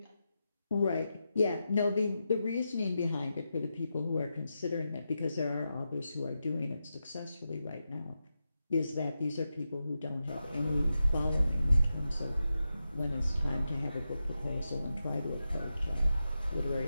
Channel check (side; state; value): both; inverted; correlation -0.89